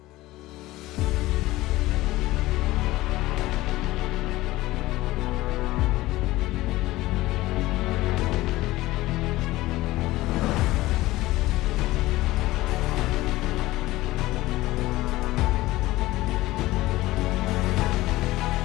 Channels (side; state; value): right; quieter; 17.8 dB